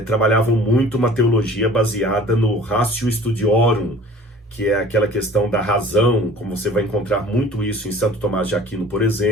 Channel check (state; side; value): normal; both; correlation 0.47